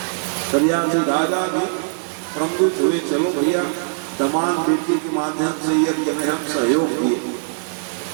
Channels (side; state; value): left; silent; digital silence